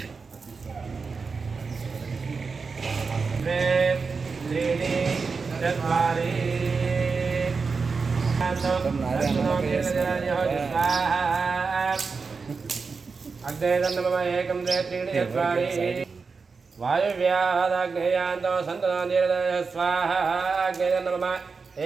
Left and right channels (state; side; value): quieter; left; 4.8 dB